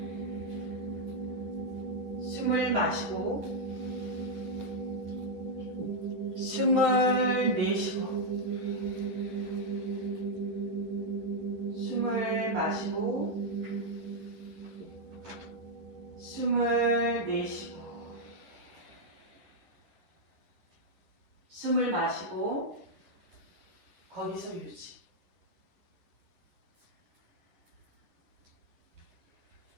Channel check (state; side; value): late; left; 11 ms